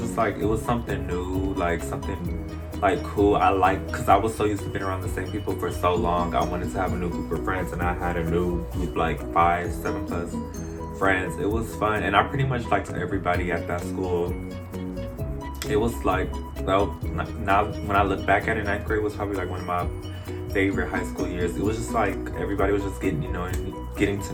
was something new, like something like cool. Because I was so used to being around the same people for so long. I wanted to have a new group of friends, and I had a new group, like 5, 7 plus friends. It was fun, and I pretty much liked everybody at that school. It was like, well, now when I look back at it, 9th grade was probably like one of my favorite high school years. It was just like everybody was just getting to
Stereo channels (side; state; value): both; identical; correlation 1.00